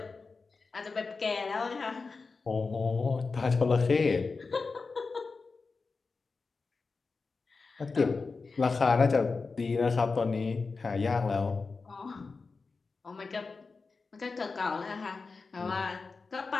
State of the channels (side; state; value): right; quieter; 4.3 dB